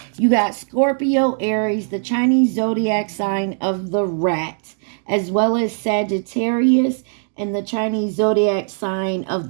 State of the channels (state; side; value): silent; left; digital silence